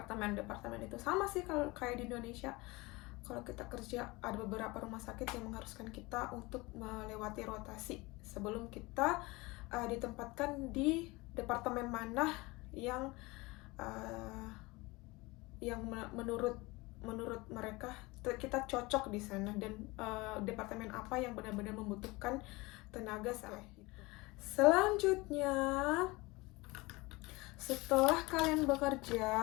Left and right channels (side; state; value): right; quieter; 23.1 dB